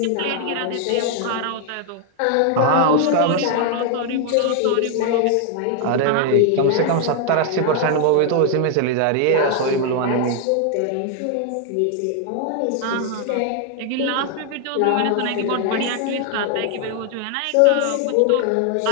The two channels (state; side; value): different; both; correlation 0.00